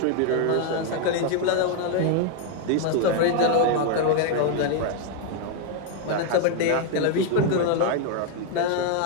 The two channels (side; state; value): both; different; correlation 0.00